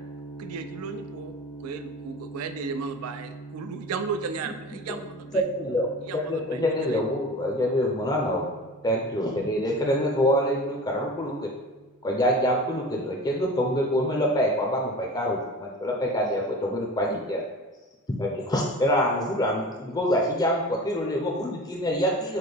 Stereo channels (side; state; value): both; normal; correlation 0.36